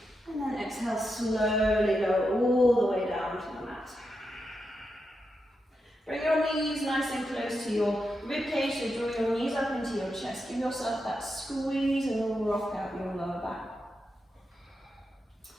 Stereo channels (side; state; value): both; normal; correlation 0.86